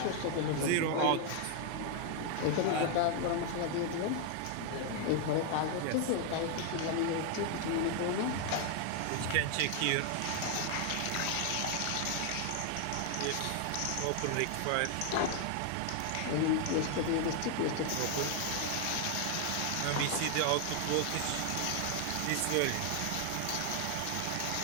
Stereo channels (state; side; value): different; both; correlation 0.00